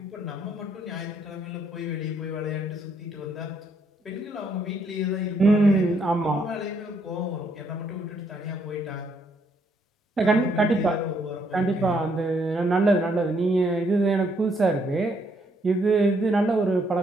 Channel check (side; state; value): both; normal; correlation 0.71